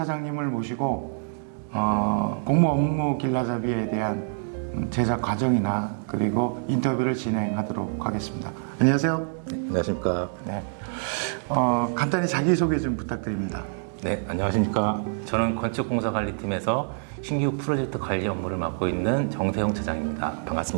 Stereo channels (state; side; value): silent; left; digital silence